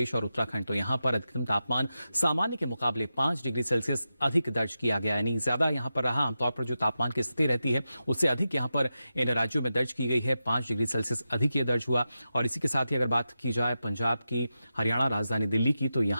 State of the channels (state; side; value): inverted; both; correlation -0.91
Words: और उत्तराखंड, तो यहाँ पर अधिकतम तापमान सामान्य के मुकाबले 5 डिग्री सेल्सियस अधिक दर्ज किया गया, यानी ज्यादा यहाँ पर रहा। आमतौर पर जो तापमान की स्थिति रहती है उससे अधिक यहाँ पर इन राज्यों में दर्ज की गई है। 5 डिग्री सेल्सियस अधिक ये दर्ज हुआ। और इसी के साथ ही अगर बात की जाए पंजाब की, हरियाणा, राजधानी दिल्ली की, तो